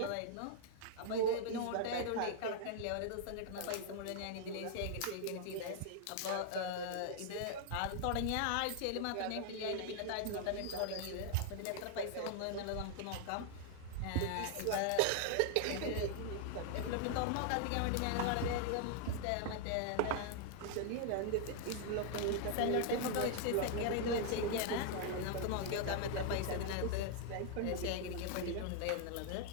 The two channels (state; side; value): different; both; correlation 0.00